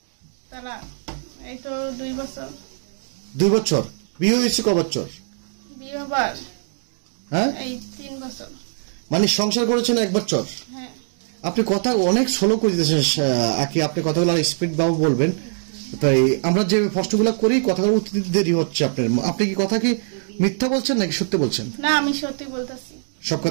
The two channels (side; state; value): left; silent; digital silence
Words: তারা এই তো 2 বছর। 2 বছর। বিয়ে হয়েছে ক বছর? বিয়ে হবার হ্যাঁ, এই 3 বছর। মানে সংসার করেছেন 1 বছর। হ্যাঁ। আপনি কথা অনেক স্লো করে দিতেছেন আকি, আপনি কথাগুলো স্পিড বাবু বলবেন। তাই আমরা যে প্রশ্নগুলো করি কথাগুলো উত্তর দিতে দেরি হচ্ছে আপনার। আপনি কি কথা কি মিথ্যা বলছেন নাকি সত্যি বলছেন? না, আমি সত্যি বলতেছি। সব